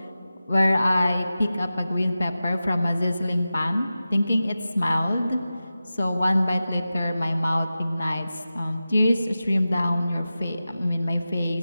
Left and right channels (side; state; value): both; inverted; correlation -0.94